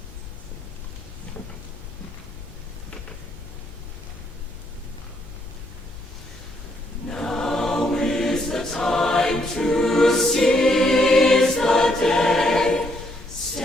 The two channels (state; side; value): noise; left; hum, 20 dB below the sound